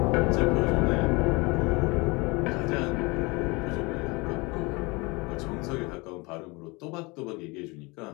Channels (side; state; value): right; quieter; 26.1 dB